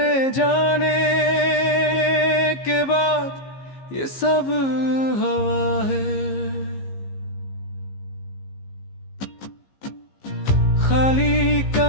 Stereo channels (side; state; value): right; late; 15 ms